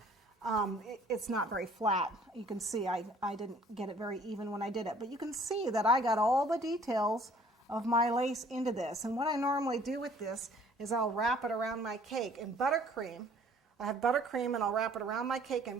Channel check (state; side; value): normal; both; correlation 0.56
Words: It's not very flat. You can see I didn't get it very even when I did it, but you can see that I got all the details of my lace into this. And what I normally do with this is I'll wrap it around my cake in buttercream. I have buttercream, and I'll wrap it around my cake